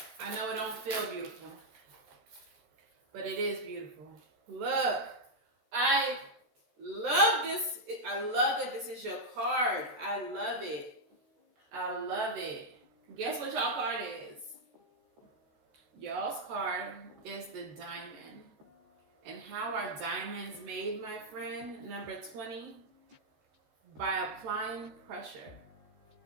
I know it don't feel beautiful, but it is beautiful. Look, I love this. I love that this is your card. I love it. I love it. Guess what y'all card is? Y'all's card is the Diamond. And how are diamonds made, my friend? Number 20, by applying pressure.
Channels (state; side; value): late; left; 13 ms